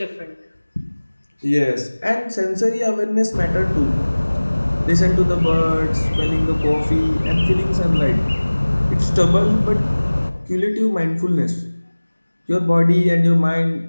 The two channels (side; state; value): both; inverted; correlation -1.00